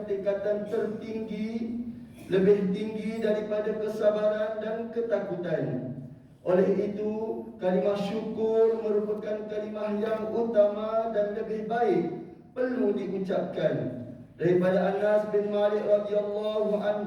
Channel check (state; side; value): identical; both; correlation 1.00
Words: tingkatan tertinggi, lebih tinggi daripada kesabaran dan ketakutan. Oleh itu, kalimah syukur merupakan kalimah yang utama dan lebih baik perlu diucapkan. Daripada Anas bin Malik radhiyallahu